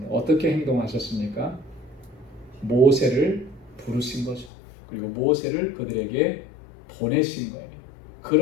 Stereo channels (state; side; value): drops out; right; at 4.5 s